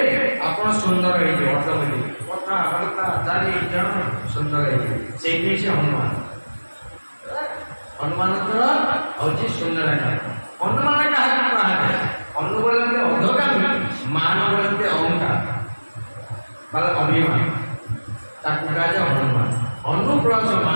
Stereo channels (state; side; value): inverted; both; correlation -1.00